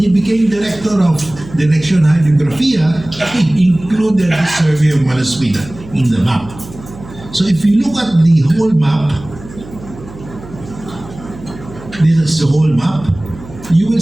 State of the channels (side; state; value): right; noise; hum, 17 dB below the sound